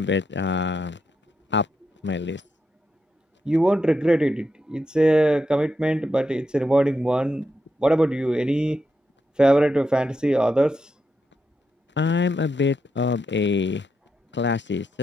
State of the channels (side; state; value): both; normal; correlation 0.84